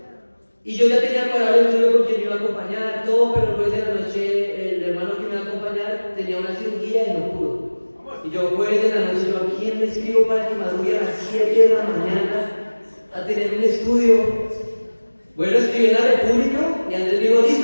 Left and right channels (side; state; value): both; inverted; correlation -1.00